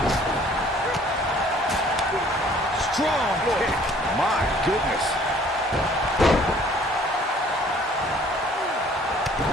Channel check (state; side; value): normal; both; correlation 0.56